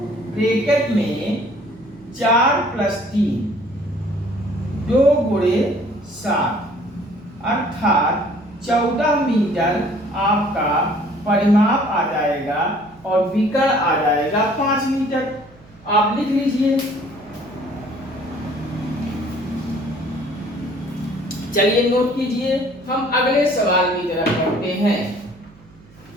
ब्रैकेट में 4 प्लस 3, 2 गुणे 7, अर्थात 14 मीटर आपका परिमाप आ जाएगा और विकर्ण आ जाएगा 5 मीटर। आप लिख लीजिए। चलिए नोट कीजिए, हम अगले सवाल की तरफ बढ़ते हैं।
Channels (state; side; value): noise; right; hum, 26 dB below the sound